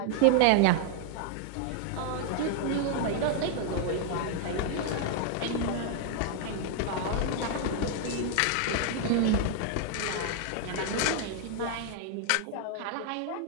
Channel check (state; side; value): different; both; correlation 0.00